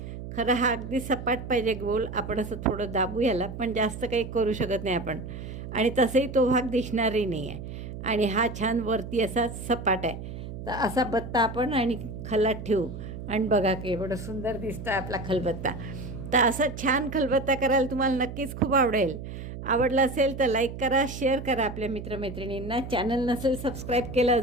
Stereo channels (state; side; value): noise; right; hum, 9 dB below the sound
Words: खरं हा अगदी सपाट पाहिजे गोल. आपण असं थोडं दाबू याला, पण जास्त काही करू शकत नाही आपण. आणि तसंही तो भाग दिसणारही नाही आहे. आणि हा छान वरती असा सपाट आहे. तर असा बत्ता आपण आणि खलात ठेवू आणि बघा की एवढं सुंदर दिसतं आपला खलबत्ता. तर असा छान खलबत्ता करायला तुम्हाला नक्कीच खूप आवडेल. आवडलं असेल तर लाईक करा, शेअर करा आपल्या मित्रमैत्रिणींना. चॅनल नसेल सबस्क्राईब केलं